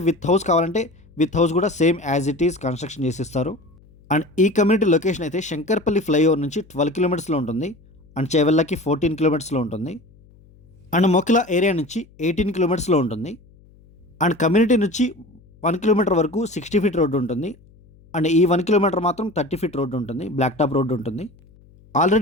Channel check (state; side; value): noise; left; hum, 27 dB below the sound